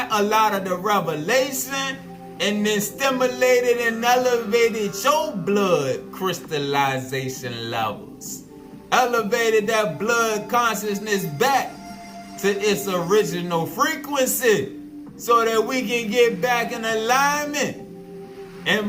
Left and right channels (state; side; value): identical; both; correlation 1.00